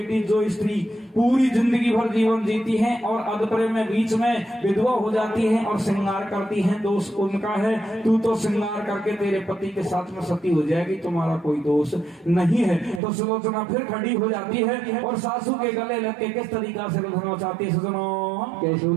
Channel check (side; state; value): left; drops out; at 13.0 s